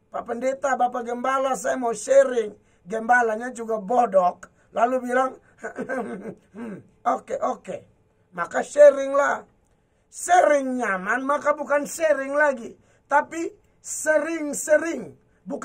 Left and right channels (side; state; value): both; identical; correlation 1.00